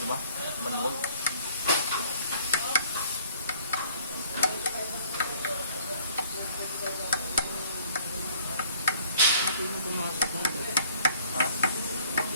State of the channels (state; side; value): inverted; both; correlation -0.57